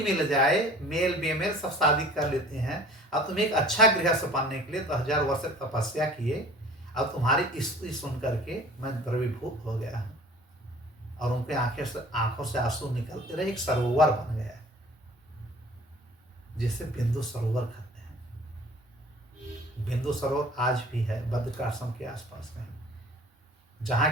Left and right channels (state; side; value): normal; both; correlation 0.47